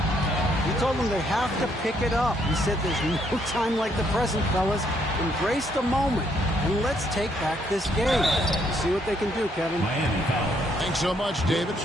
He told them they have to pick it up. He said there's no time like the present, fellas. Embrace the moment, and let's take back this game. See what they can do, Kevin. Thanks so much, David.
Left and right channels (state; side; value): normal; both; correlation 0.71